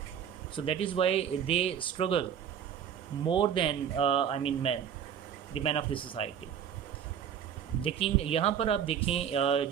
so that is why they struggle more than men, the men of the society. लेकिन यहाँ पर आप देखें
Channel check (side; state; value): left; quieter; 8.5 dB